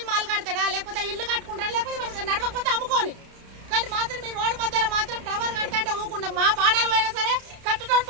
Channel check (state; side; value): late; left; 31 ms